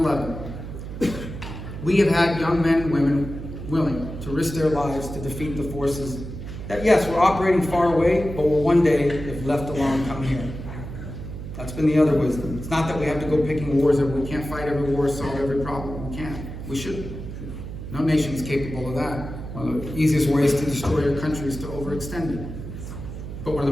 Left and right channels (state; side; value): noise; right; hum, 9 dB below the sound